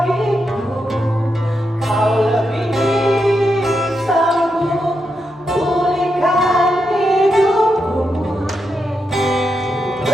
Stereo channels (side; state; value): both; normal; correlation 0.84